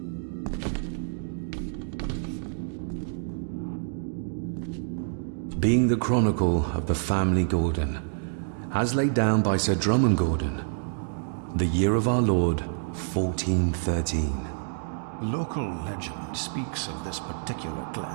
Being the chronicle of the family Gordon, as laid down by Sir Drummond Gordon, the year of our Lord, 1413. Local legend speaks of this particular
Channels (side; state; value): left; silent; digital silence